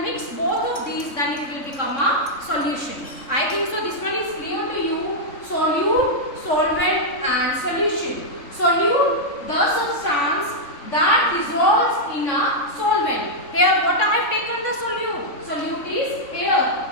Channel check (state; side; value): late; right; 3.6 ms